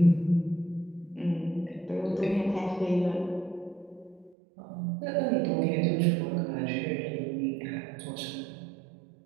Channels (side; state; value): left; drops out; at 4.4 s